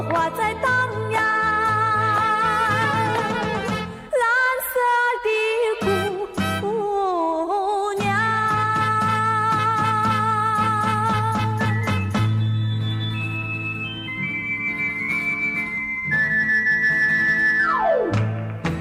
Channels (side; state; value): both; identical; correlation 1.00